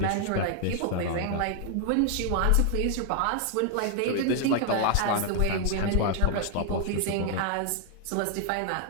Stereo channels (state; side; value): different; both; correlation 0.00